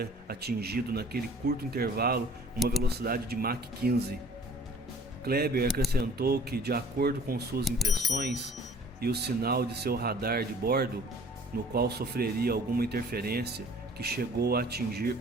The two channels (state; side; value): normal; both; correlation 0.52